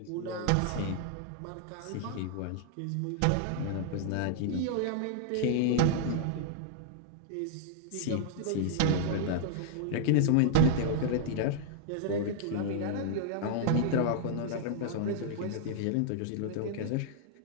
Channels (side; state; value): both; different; correlation -0.01